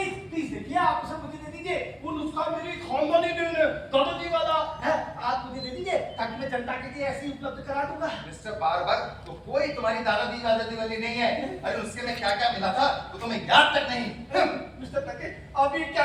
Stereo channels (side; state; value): both; identical; correlation 1.00